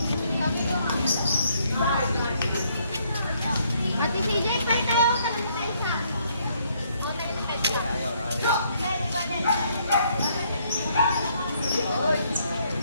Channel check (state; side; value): inverted; both; correlation -0.69